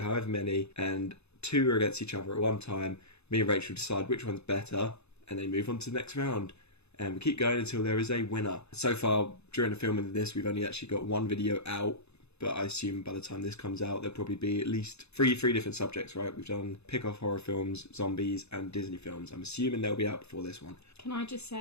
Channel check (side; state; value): right; late; 0.80 ms